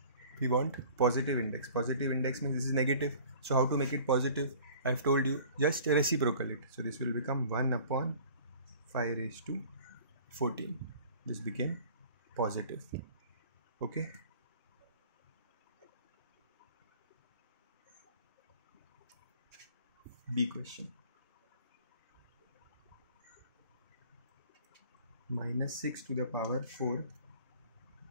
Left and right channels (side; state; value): both; inverted; correlation -0.48